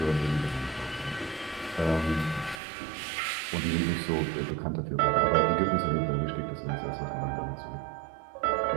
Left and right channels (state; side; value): drops out; left; at 2.6 s